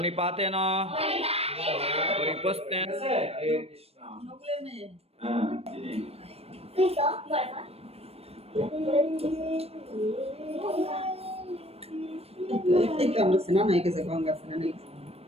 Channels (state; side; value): late; left; 0.29 ms